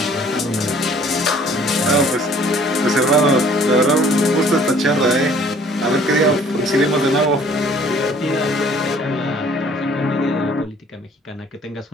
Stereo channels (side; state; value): both; normal; correlation 0.55